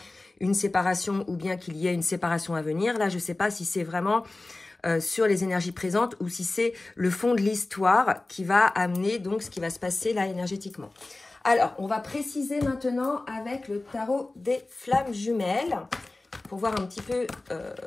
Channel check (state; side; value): quieter; right; 3.0 dB